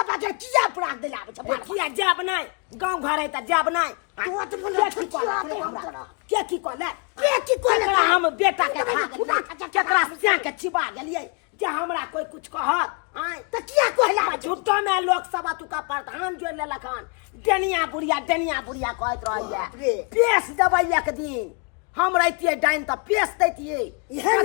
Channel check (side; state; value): right; quieter; 35.0 dB